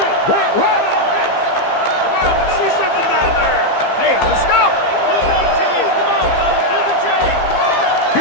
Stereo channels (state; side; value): late; right; 15 ms